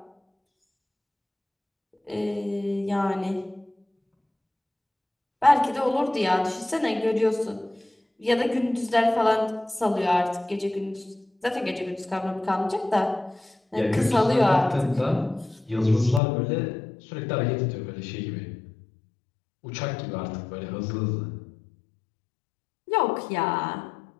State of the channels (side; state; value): right; drops out; at 16.2 s